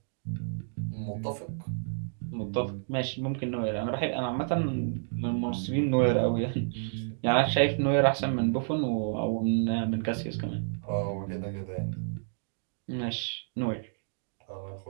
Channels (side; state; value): left; silent; digital silence